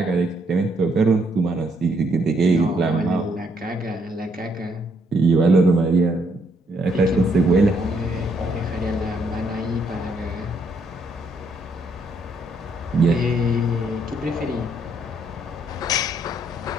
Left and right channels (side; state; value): both; normal; correlation 0.71